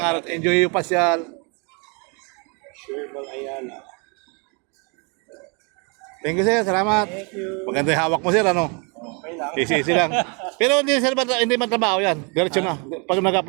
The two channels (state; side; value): quieter; left; 33.6 dB